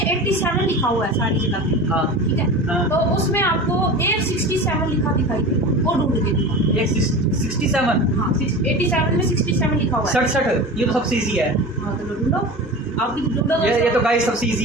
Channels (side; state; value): both; normal; correlation 0.32